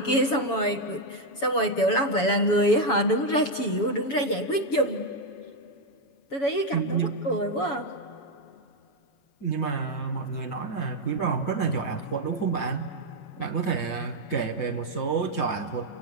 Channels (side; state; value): right; late; 7.1 ms